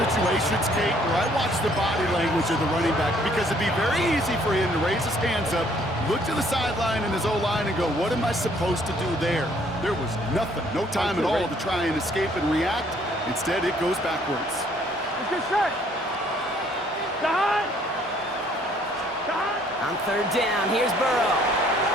Kate, where I watch the body language of the running back because it'd be very easy for him to raise his hands up, look to the sideline and his O-line and go, what am I supposed to do there? There was nothing, no time at all to try and escape and react. Instead, it goes backwards. Let's get set. On third down, here's Burrow.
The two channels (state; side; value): normal; both; correlation 0.63